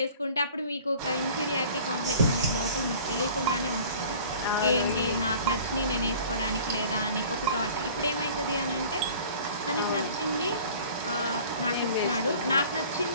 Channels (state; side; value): inverted; both; correlation -0.47